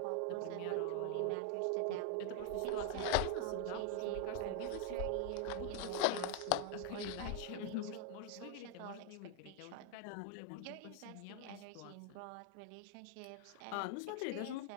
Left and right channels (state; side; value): different; both; correlation 0.00